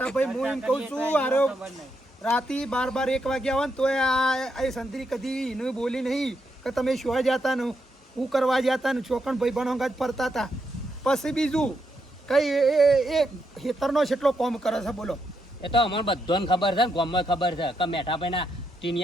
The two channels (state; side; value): normal; both; correlation 0.80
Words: હું એમ કહું છું આરો ખબર નહીં રાતી 12 1 વાગ્યા હોય ને તોય આ સંતરી કદી એને બોલી નહીં કે તમે શું જતા ને હું કરવા જતા ને છોકણ ભાઈ બનો ફરતા હતા પછી બીજું કઈ એ ખેતરનો કેટલો કોમ કરે છે બોલો એ તો અમને બધાને ખબર છે ને ગામમાં ખબર છે કે મેઠાભાઈના